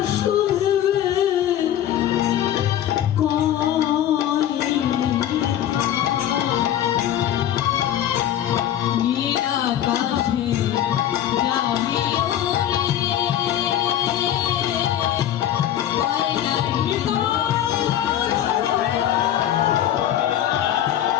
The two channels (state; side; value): quieter; right; 11.3 dB